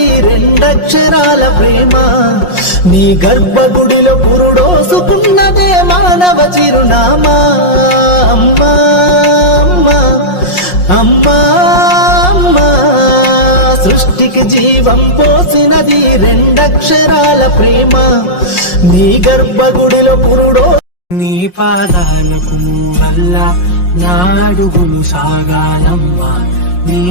రెండక్షరాల ప్రేమ, నీ గర్భగుడిలో పురుడోసుకున్నదే మానవ చిరునామా. అమ్మా అమ్మా అమ్మా అమ్మా, సృష్టికి జీవం పోసినది రెండక్షరాల ప్రేమ, నీ గర్భగుడిలో పురుడో. నీ పాదాలకు మూవల్ల నా అడుగులు సాగాలమ్మా, నీ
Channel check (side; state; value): right; late; 5.6 ms